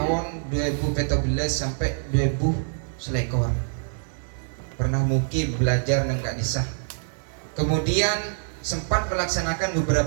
2014 sampai 2000 selekor. Pernah mukim belajar nang Kadisah. Kemudian sempat melaksanakan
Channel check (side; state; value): left; silent; 62 dB below the other